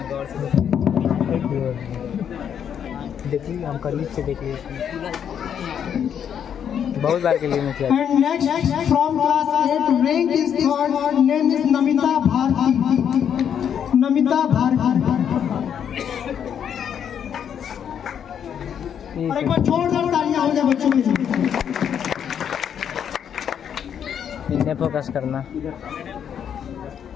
देखिए हम करीब से देख लीजिए, बहुत बार के लिए मैं किया। And next from class 8 rank is third, name is Namita Bharti. Namita Bharti. और एक बार जोरदार तालियां हो जाए बच्चों के लिए। इन्हें फोकस करना।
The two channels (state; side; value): quieter; right; 8.5 dB